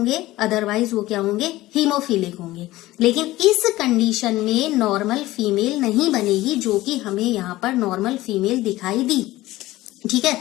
अदरवाइज वो क्या होंगे, हीमोफिलिक होंगे। लेकिन इस कंडीशन में नॉर्मल फीमेल नहीं बनेगी, जो कि हमें यहाँ पर नॉर्मल फीमेल दिखाई दी। ठीक है,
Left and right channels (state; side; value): quieter; right; 17.3 dB